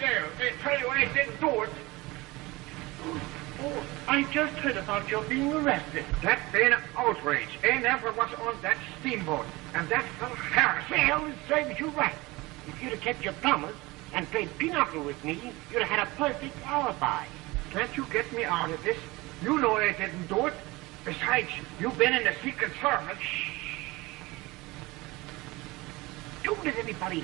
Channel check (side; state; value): left; quieter; 22.1 dB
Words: They tell you I didn't do it. Oh, I just heard about your being arrested. That been an outrage. I never was on that steamboat. And that fellow Harris. Well, it serves you right. If you'd have kept your promise and played pinochle with me, you'd have had a perfect alibi. Can't you get me out of this? You know I didn't do it. Besides, you've been in the Secret Service. Don't let anybody